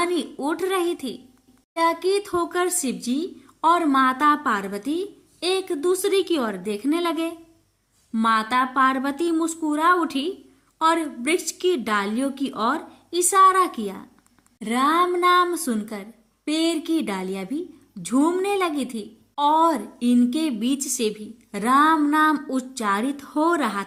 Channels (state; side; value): identical; both; correlation 1.00